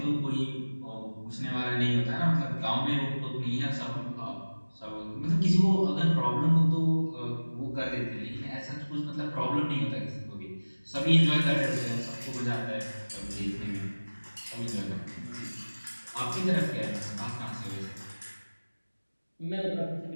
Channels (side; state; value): both; inverted; correlation -1.00